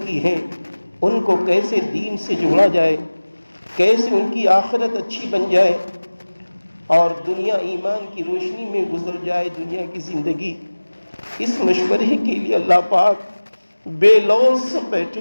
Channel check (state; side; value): inverted; both; correlation -1.00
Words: ہیں ان کو کیسے دین سے جوڑا جائے، کیسے ان کی آخرت اچھی بن جائے اور دنیا ایمان کی روشنی میں گزر جائے دنیا کی زندگی. اس مشورے کے لیے اللہ پاک بے لوث بیٹھے